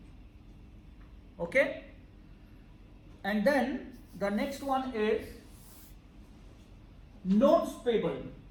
Okay. And then the next one is notes payable.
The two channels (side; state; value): both; identical; correlation 1.00